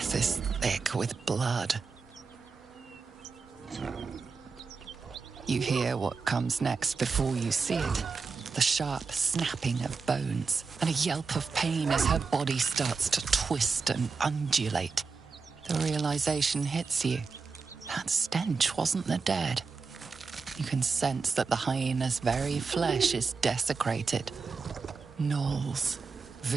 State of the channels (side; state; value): left; quieter; 4.9 dB